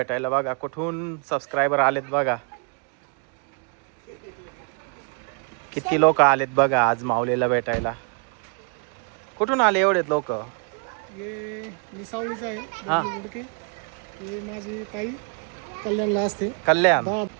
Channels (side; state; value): left; quieter; 39.8 dB